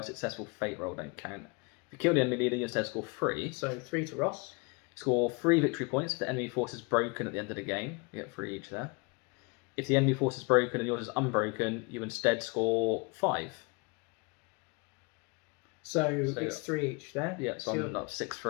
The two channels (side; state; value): right; quieter; 30.0 dB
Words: successful fate roll don't count. If you kill the enemy leader, you instead score 3. So 3 to Ross. Score 3 victory points if the enemy force is broken at the end of the game. You get 3 each there. If the enemy force is broken and yours is unbroken, you instead score 5. So it's 3 each there. Yeah, so I'm not